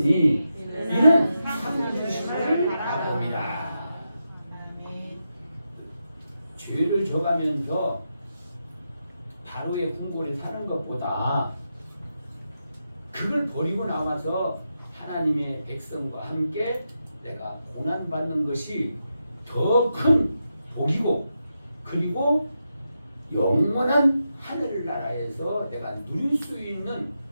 이는 상 주심을 바랍니다. 죄를 져가면서 바로의 궁궐에 사는 것보다 그걸 버리고 나와서 하나님의 백성과 함께 내가 고난받는 것이 더 큰 복이고, 그리고 영원한 하늘나라에서 내가 누릴 수 있는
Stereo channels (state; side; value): inverted; both; correlation -0.87